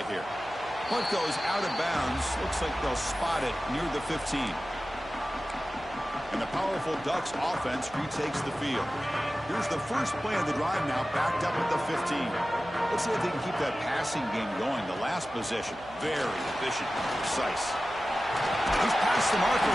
here. Punt goes out of bounds. Looks like they'll spot it near the 15. And the powerful Ducks offense retakes the field. Here's the first play of the drive now, backed up at the 15. Let's see if they can keep that passing game going. The last possession, very efficient, precise. He's past the marker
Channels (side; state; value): right; noise; hum, 21 dB below the sound